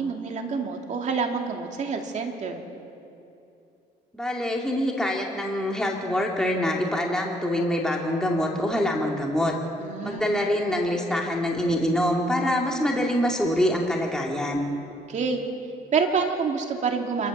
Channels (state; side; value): normal; both; correlation 0.66